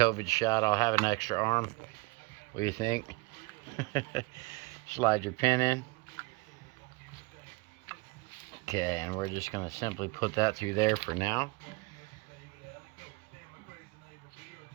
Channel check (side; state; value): left; quieter; 25.5 dB